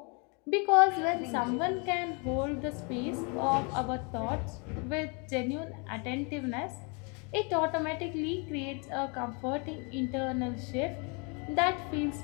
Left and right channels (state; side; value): quieter; right; 34.0 dB